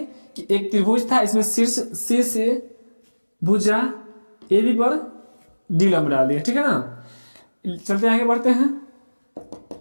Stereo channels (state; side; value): inverted; both; correlation -1.00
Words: कि एक त्रिभुज था, इसमें शीर्ष सी से भुजा ए बी पर डी लम्ब डाल दिया, ठीक है ना। चलते आगे बढ़ते हैं।